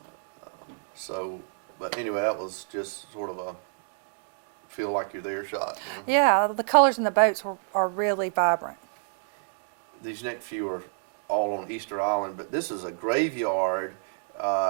but anyway, that was just sort of a feel like you're there shot. You know? Yeah, the colors in the boats are really vibrant. These next few are all on Easter Island, but this is a graveyard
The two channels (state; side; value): silent; left; digital silence